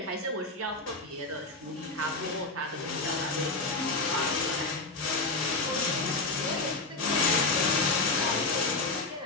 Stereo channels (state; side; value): quieter; right; 3.4 dB